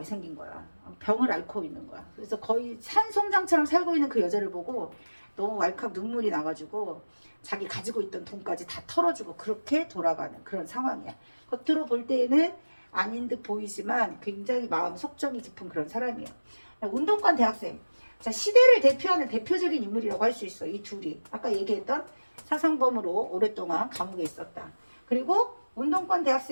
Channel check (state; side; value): inverted; both; correlation -1.00